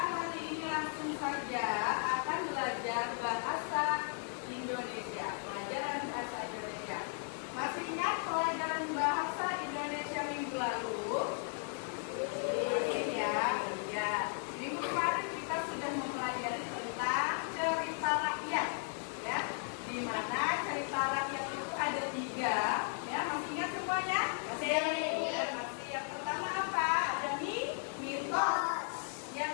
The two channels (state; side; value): silent; right; 54 dB below the other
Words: hari ini langsung saja akan belajar bahasa Indonesia, pelajaran bahasa Indonesia. Masih ingat pelajaran bahasa Indonesia minggu lalu? Ya. Minggu kemarin kita sudah mempelajari tentang cerita rakyat, ya. Di mana cerita rakyat itu ada 3, ya. Masih ingat semuanya? Masih. Yang pertama apa? Ada mitos. Yang